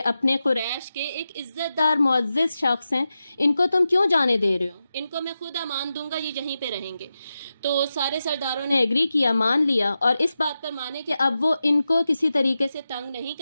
اپنے قریش کے ایک عزت دار معزز شخص ہیں، ان کو تم کیوں جانے دے رہے ہو؟ ان کو میں خود امان دوں گا، یہ یہیں پہ رہیں گے۔ تو سارے سرداروں نے ایگری کیا، مان لیا، اور اس بات پر مانے کہ اب وہ ان کو کسی طریقے سے تنگ نہیں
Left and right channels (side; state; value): both; inverted; correlation -0.91